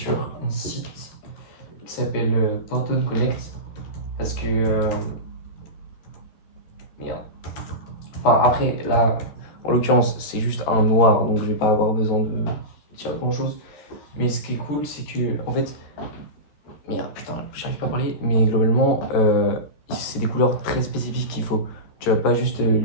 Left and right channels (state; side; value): late; right; 13 ms